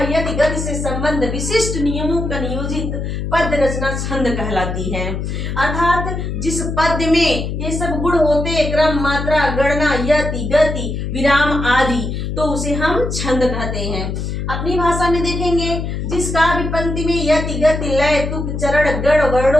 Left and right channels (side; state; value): left; noise; hum, 4 dB below the sound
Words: यति गति से संबंध विशिष्ट नियमों का नियोजित पद रचना छंद कहलाती है। अर्थात जिस पद में ये सब गुण होते, क्रम, मात्रा, गणना, यति, गति, विराम आदि, तो उसे हम छंद कहते हैं। अपनी भाषा में देखेंगे, जिस काव्य पंक्ति में यति, गति, लय, तुक, चरण, गण,